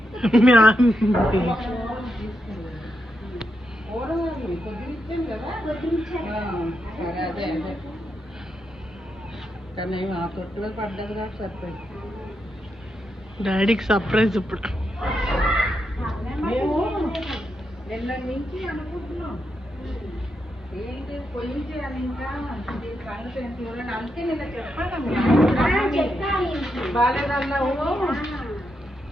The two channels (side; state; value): both; normal; correlation 0.84